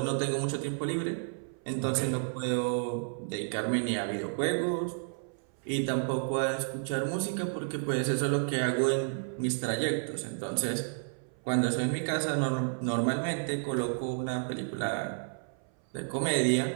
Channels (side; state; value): left; silent; 57 dB below the other